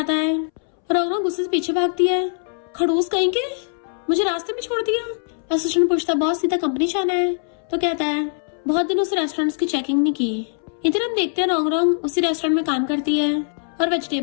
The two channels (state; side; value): silent; right; 64 dB below the other